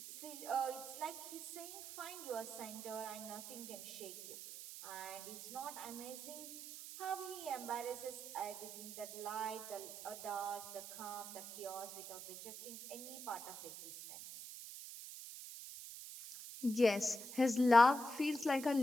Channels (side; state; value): right; noise; hiss, 10 dB below the sound